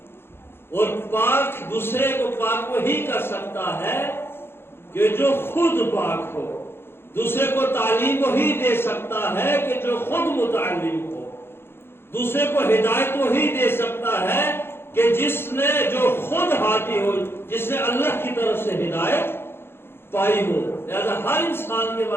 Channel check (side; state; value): right; late; 0.11 ms